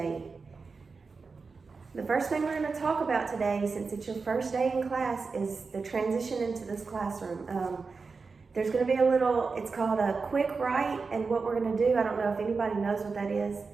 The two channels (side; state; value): left; quieter; 4.6 dB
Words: The first thing we're going to talk about today, since it's your first day in class, is the transition into this classroom. There's going to be a little, it's called a quick write, and what we're going to do, I don't know if anybody knows what that is.